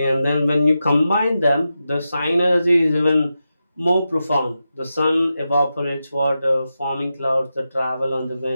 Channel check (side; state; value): both; inverted; correlation -0.90